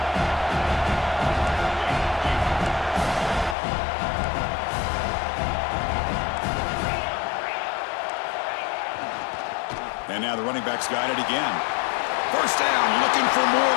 And now the running back's got it again. First down, looking for more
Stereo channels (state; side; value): drops out; right; at 3.6 s